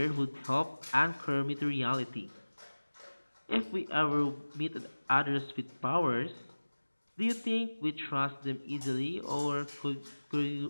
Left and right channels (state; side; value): inverted; both; correlation -1.00